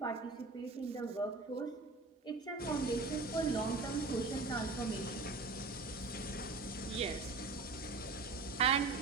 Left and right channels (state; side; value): quieter; left; 3.7 dB